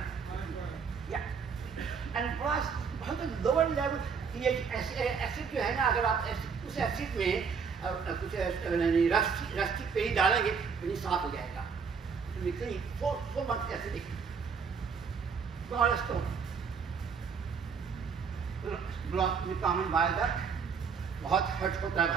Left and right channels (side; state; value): left; quieter; 6.0 dB